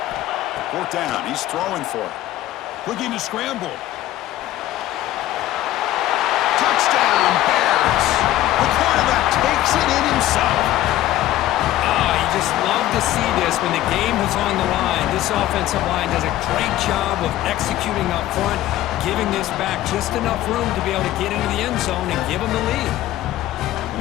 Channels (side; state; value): right; quieter; 14.4 dB